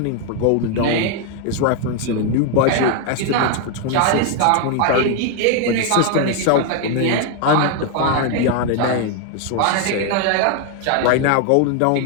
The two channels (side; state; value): both; different; correlation 0.01